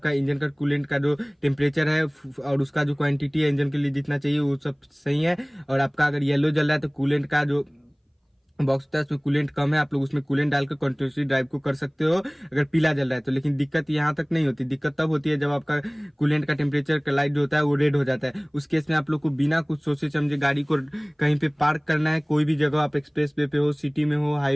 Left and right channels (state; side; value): identical; both; correlation 1.00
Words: इंजन का कूलेंट का जो टेम्परेचर है और उसका जो क्वांटिटी है इंजन के लिए जितना चाहिए वो सब सही है। और आपका अगर येलो जल रहा है तो कूलेंट का जो बॉक्स होता है उसमें कूलेंट कम है, आप लोग उसमें कूलेंट डालकर कंटिन्यूसली ड्राइव को कर सकते हो अगर पीला जल रहा है तो। लेकिन दिक्कत यहाँ तक नहीं होती, दिक्कत तब होती है जब आपका कूलेंट का टेम्परेचर का लाइट जो होता है वो रेड हो जाता है। उस केस में आप लोग को बिना कुछ सोचे समझे गाड़ी को कहीं पे पार्क करना है, कोई भी जगह, आप एक्सप्रेस वे पे हो, सिटी में हो,